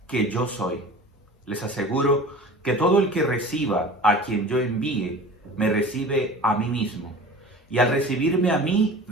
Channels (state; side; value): normal; both; correlation 0.39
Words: que yo soy. Les aseguro que todo el que reciba a quien yo envíe, me recibe a mí mismo. Y al recibirme a mí,